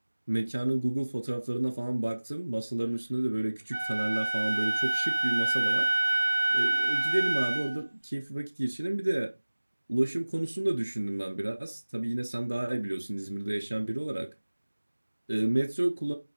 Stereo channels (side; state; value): both; inverted; correlation -1.00